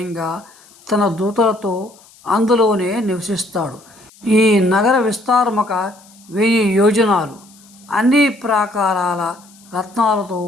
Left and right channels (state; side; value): noise; left; hiss, 26 dB below the sound